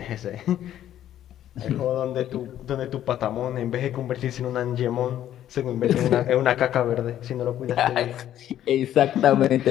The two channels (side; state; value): right; quieter; 11.6 dB